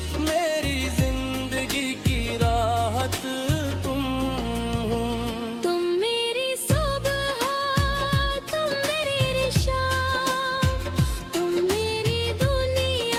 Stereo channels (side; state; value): both; identical; correlation 1.00